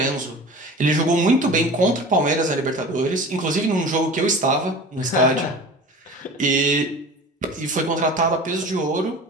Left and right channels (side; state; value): both; normal; correlation 0.38